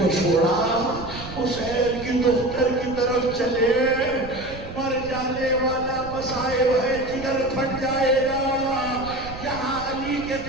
چھوڑا، حسین کی دختر کی طرف چلے، مر جانے والا مصائب ہے، جگر پھٹ جائے گا۔ یہاں علی کے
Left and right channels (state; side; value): noise; right; rumble, 13 dB below the sound